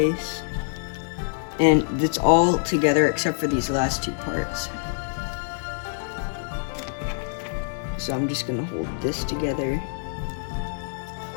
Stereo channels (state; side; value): silent; right; digital silence